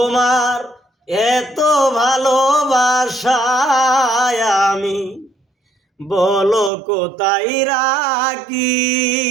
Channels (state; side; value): drops out; left; at 6.7 s